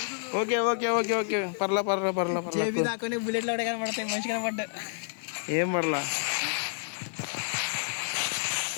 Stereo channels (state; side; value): silent; right; 58 dB below the other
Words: ఓకే పర్లా బుల్లెట్లు కూడా కనపడతాయి. మంచి కనపడ్డా. ఏం పర్లా.